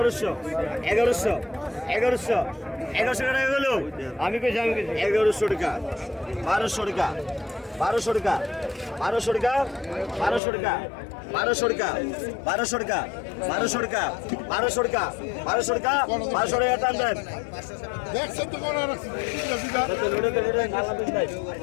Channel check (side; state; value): right; drops out; at 10.4 s